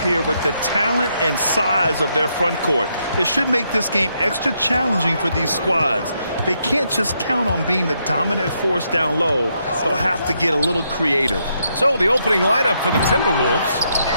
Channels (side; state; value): both; inverted; correlation -0.78